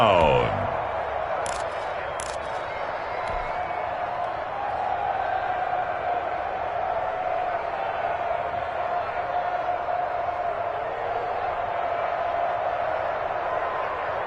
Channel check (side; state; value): both; identical; correlation 1.00